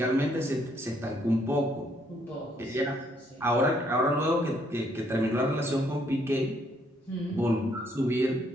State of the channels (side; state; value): both; normal; correlation 0.69